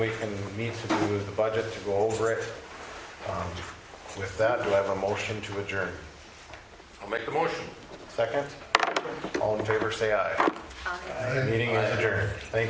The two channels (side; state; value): both; identical; correlation 1.00